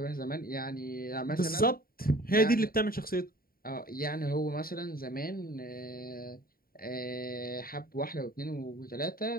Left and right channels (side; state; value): right; late; 0.43 ms